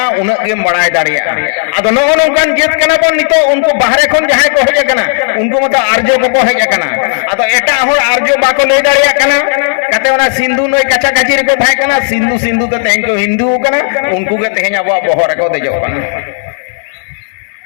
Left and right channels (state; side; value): silent; right; digital silence